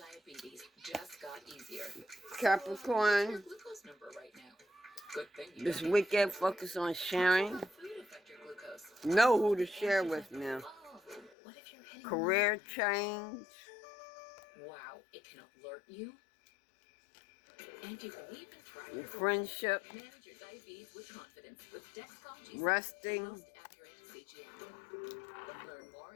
just got easier. Capricorn, Your glucose number right now. Good thing you this don't weekend focus on sharing. let food affect your glucose. Know who to share with now. Oh, what if you're hitting Career change, Wow, it can alert you. And you can even track your your friendship, manage your diabetes with confidence with Dexcom G7, resting, the most accurate CGM. Learn more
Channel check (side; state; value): right; drops out; at 11.3 s